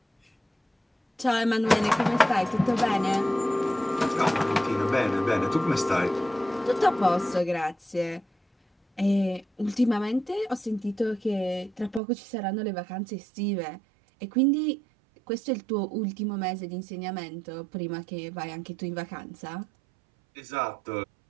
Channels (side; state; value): left; drops out; at 12.0 s